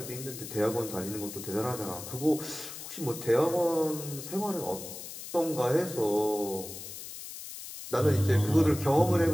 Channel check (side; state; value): left; noise; hiss, 11 dB below the sound